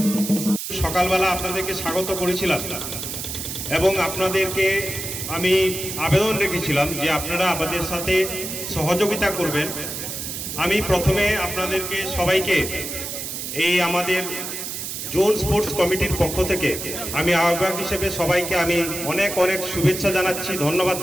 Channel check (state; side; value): noise; right; hiss, 6 dB below the sound